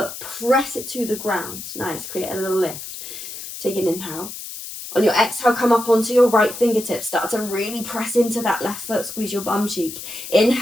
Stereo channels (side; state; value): left; noise; hiss, 10 dB below the sound